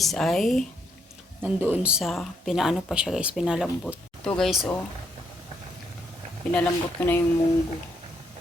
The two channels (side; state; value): both; normal; correlation 0.75